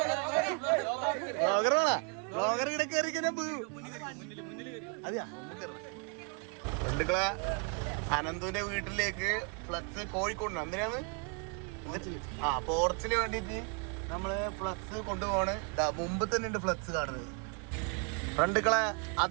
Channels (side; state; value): left; quieter; 36.4 dB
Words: ബ്ലോഗർ ഇവിടെ കയറിക്കനെ ബന്ധുക്കളെ അനന്തുവിന്റെ വീട്ടിലേക്ക് ഫ്ലക്സ് കോഴിക്കോട് എന്തിനാണ് പോർച്ചിന് വേണ്ടിട്ട് നമ്മള് ഫ്ലക്സ് കൊണ്ടുപോണ്. മുമ്പ് തന്നെ ഉണ്ട് ഫ്ലക്സ് കാണുന്നത്. ഫ്രണ്ടുക്കളെ